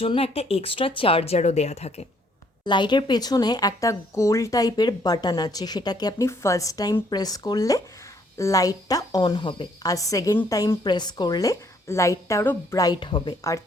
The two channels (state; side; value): normal; both; correlation 0.66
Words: একটা এক্সট্রা চার্জারও দেয়া থাকে। লাইটের পেছনে একটা গোল টাইপের বাটন আছে, সেটাকে আপনি ফার্স্ট টাইম প্রেস করলে লাইটটা অন হবে, আর সেকেন্ড টাইম প্রেস করলে লাইটটা আরও ব্রাইট হবে, আর